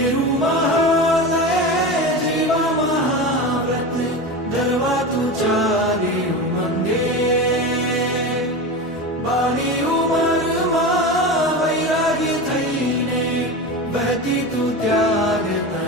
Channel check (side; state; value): both; normal; correlation 0.25